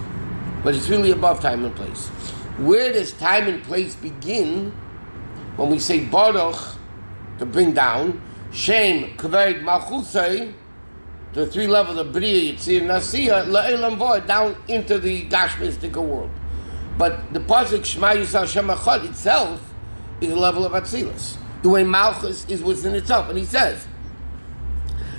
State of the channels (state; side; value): inverted; both; correlation -1.00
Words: But it's really above time and place. Where does time and place begin? When we say Baruch, to bring down, Shem, Kaved, Malchusei, the three levels of Bria, Yitzir, Nasiyah, La'elam Void, down into the Gashmistic world. But the Pasuk Shema Yisrael Shem Echad itself is a level of Atzilus. The way Malchus is within itself. And he says,